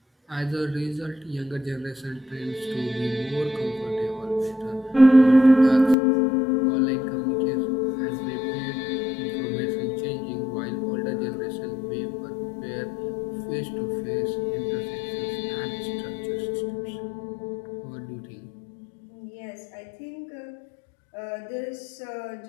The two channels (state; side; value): drops out; right; at 6.0 s